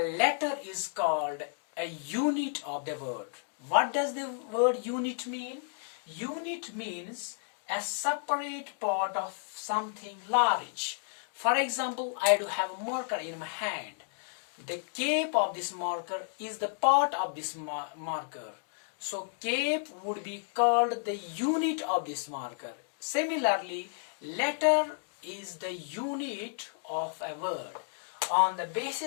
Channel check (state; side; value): silent; right; digital silence